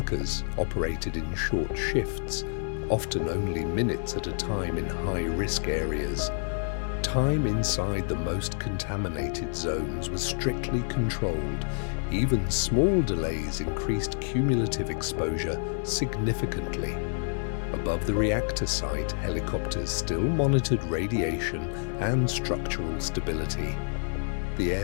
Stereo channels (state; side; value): silent; right; digital silence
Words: operated in short shifts, often only minutes at a time in high-risk areas. Time inside the most contaminated zones was strictly controlled. Even small delays increased cumulative exposure significantly. Above the reactor site, helicopters still monitored radiation and structural stability. The